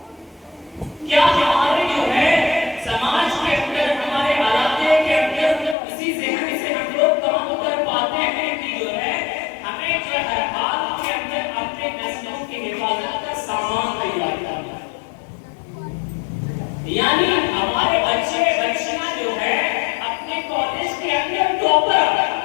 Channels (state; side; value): drops out; right; at 5.8 s